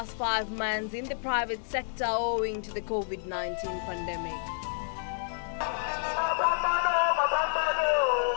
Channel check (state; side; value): silent; right; 58 dB below the other